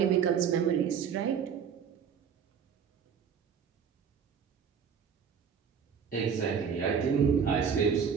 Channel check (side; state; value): left; quieter; 7.1 dB